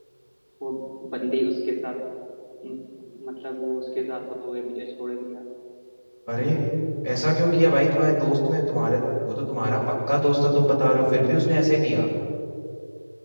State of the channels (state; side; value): inverted; both; correlation -1.00